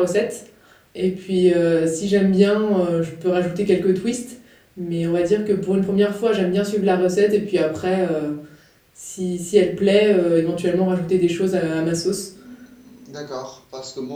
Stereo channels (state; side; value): identical; both; correlation 1.00